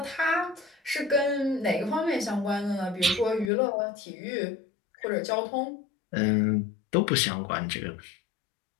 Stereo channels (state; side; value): drops out; right; at 3.5 s